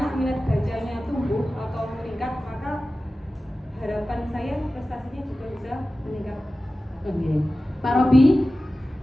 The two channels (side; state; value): both; normal; correlation 0.95